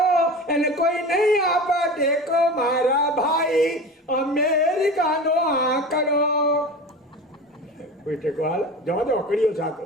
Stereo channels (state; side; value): normal; both; correlation 0.33